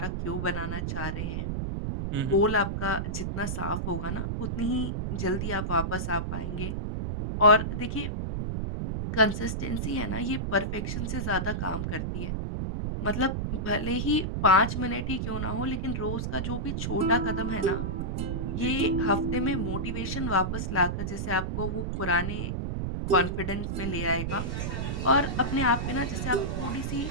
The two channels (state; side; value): noise; right; rumble, 2 dB below the sound